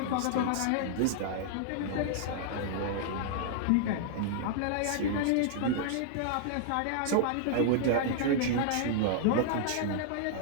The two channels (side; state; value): both; different; correlation -0.01